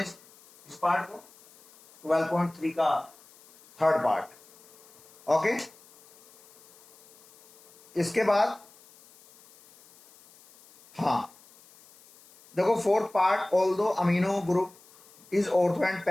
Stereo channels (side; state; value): left; noise; hiss, 26 dB below the sound